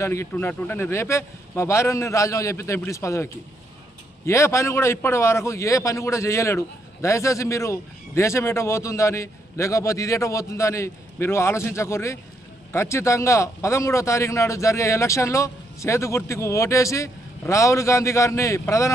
ఇట్టున్నట్టుంటే నేను రేపే మా భార్యని రాజీనామా చేపిస్తా ఎంపీటీసీ పదవికి. ఏ పని కూడా ఇప్పటి వరకు ఏ పని కూడా చేయలేడు. దయచేసి మీరు దేశం ఎటో పోతుందని, లేకపోతే ఇదేటో పోతుందని మీరు ఆలోచించకూర్రి. ఖచ్చితంగా 13వ తారీఖు నాడు జరిగే ఎలక్షన్లో చేతు గుర్తుకు ఓటేసి రాహుల్ గాంధీ గారిని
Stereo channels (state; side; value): normal; both; correlation 0.76